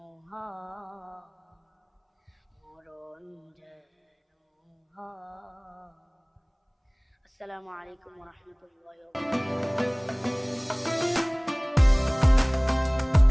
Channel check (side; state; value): both; identical; correlation 1.00